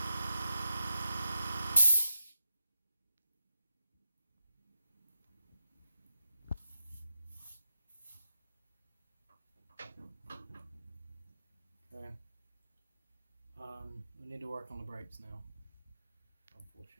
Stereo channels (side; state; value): both; inverted; correlation -0.85